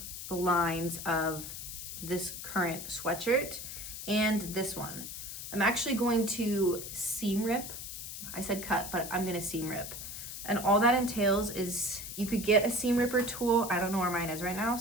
the lines of this current sweatshirt and this one. I'm actually going to seam rip. I said cut, but I'm going to seam rip. And all that entails is you could get a seam ripper tool. I don't know where mine is right now,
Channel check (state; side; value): noise; left; hiss, 8 dB below the sound